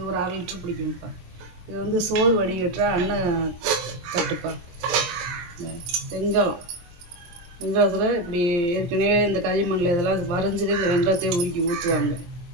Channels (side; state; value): left; late; 23 ms